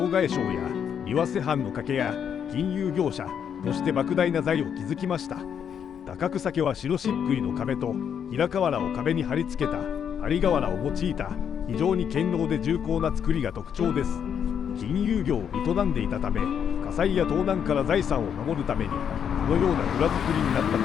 替商や岩瀬藩の掛けや金融業者として莫大な財を築きました。高草家は白漆喰の壁と平瓦を壁に貼り付けた張瓦を用いた非常に堅牢で重厚な造りが特徴です。金融業を営んでいたため火災や盗難から財産を守るためにこのような蔵造りになったと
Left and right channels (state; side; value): quieter; right; 8.1 dB